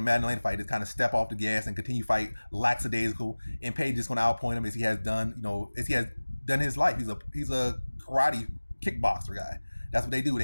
the Maddalena fight, just kind of step off the gas and continue fight lackadaisical. And Page is going to outpoint him as he has done, as he has done his life. He's a karate kickboxer guy. That's what they do.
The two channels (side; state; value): both; inverted; correlation -1.00